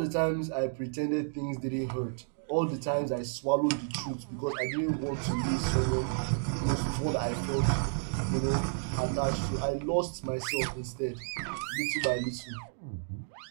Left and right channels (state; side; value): silent; left; digital silence